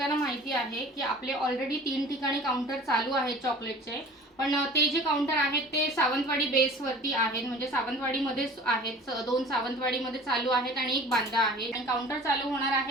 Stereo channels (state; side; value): normal; both; correlation 0.44